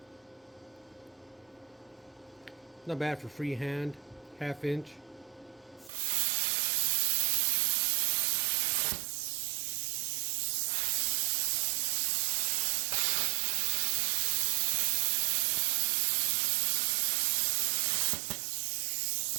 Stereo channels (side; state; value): left; drops out; at 5.9 s